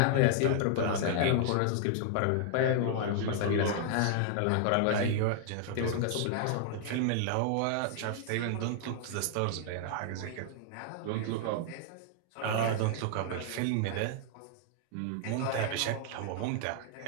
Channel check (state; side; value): different; both; correlation -0.01